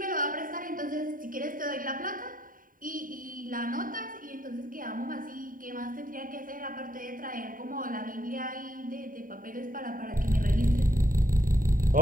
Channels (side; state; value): left; late; 0.40 ms